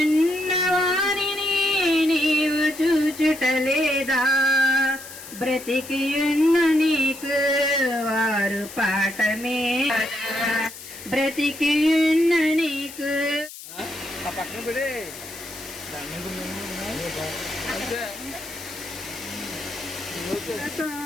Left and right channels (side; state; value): left; noise; hiss, 14 dB below the sound